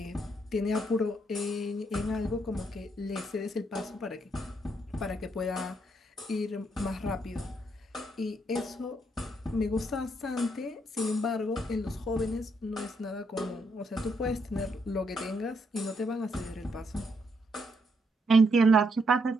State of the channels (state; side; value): normal; both; correlation 0.75